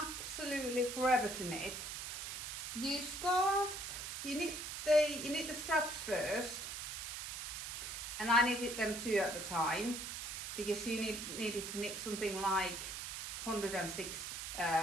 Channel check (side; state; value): right; noise; hiss, 6 dB below the sound